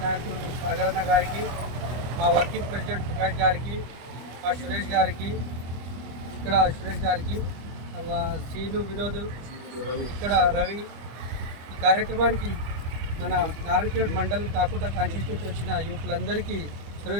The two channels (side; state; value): left; late; 25 ms